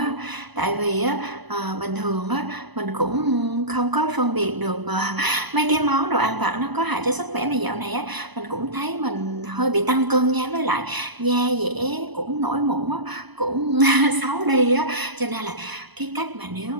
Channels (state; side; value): late; left; 1.0 ms